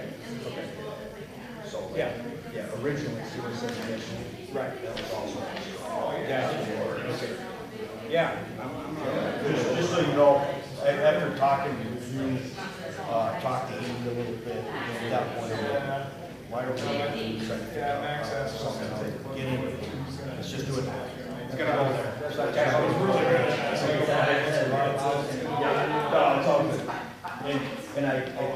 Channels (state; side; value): identical; both; correlation 1.00